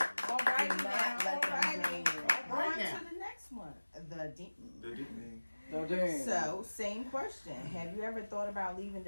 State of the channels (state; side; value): inverted; both; correlation -1.00